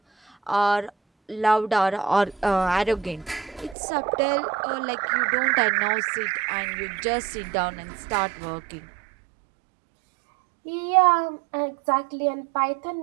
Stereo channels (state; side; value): drops out; left; at 3.8 s